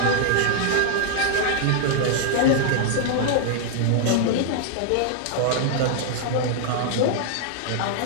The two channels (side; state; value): both; different; correlation -0.01